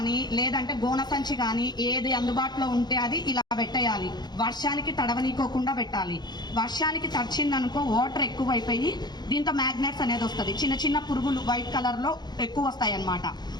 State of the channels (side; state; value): right; late; 0.20 ms